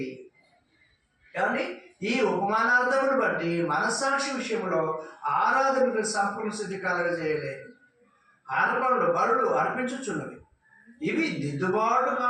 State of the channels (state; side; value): identical; both; correlation 1.00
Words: ఏమండి? ఈ ఉపమానార్థమును బట్టి మనస్సాక్షి విషయంలో ఆరాధనకు సంపూర్ణ సిద్ధి కలగజేయలేదు. అర్పణలు బలులు అర్పించుచున్నవి. ఇవి దిద్దుబాటు